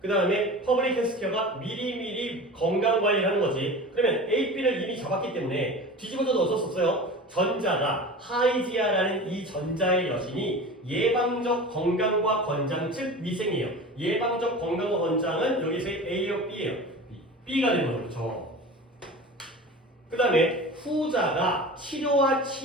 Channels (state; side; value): normal; both; correlation 0.35